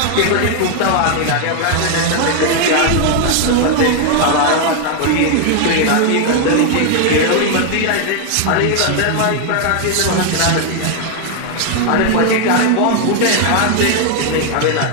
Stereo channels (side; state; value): both; different; correlation 0.00